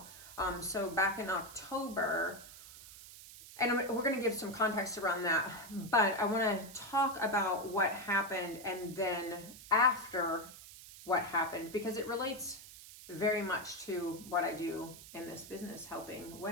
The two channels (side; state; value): right; noise; hiss, 16 dB below the sound